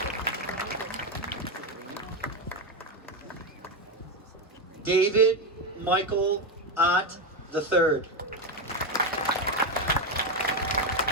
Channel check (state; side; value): normal; both; correlation 0.10